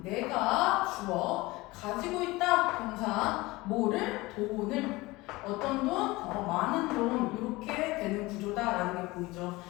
내가 주어 가지고 있다 동사 뭐를 돈을 어떤 돈? 많은 돈 이렇게 되는 구조다라는 게 보이죠.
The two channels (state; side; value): quieter; right; 21.2 dB